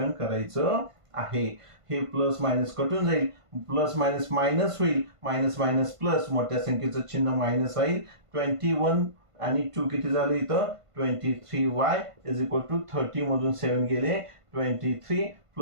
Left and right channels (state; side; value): late; left; 1.5 ms